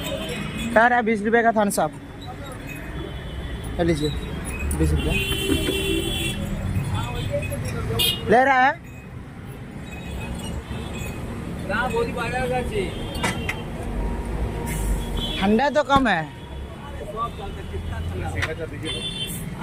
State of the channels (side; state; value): both; identical; correlation 1.00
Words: কার 20 रुपये का थम्स अप लीजिए, 20 रुपये ले रहा है। ठंडा तो कम है।